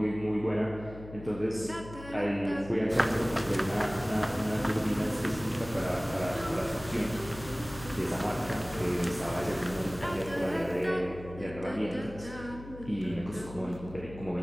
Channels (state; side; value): noise; left; hum, 14 dB below the sound